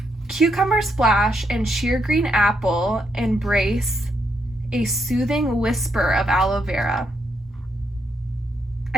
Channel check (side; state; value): both; normal; correlation 0.78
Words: Cucumber splash and sheer green apple embrace a soothing whisper of aloe vera.